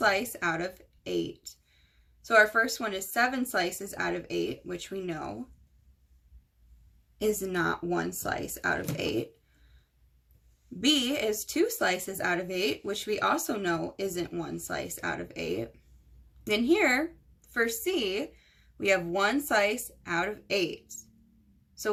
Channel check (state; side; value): identical; both; correlation 1.00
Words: out of 8. So our first one is 7 slices out of 8, which we know is not 1 slice out of 8. B is 2 slices out of 8, which we also know isn't 1 slice out of 8. Then here, for C, we have 1 slice out of 8. So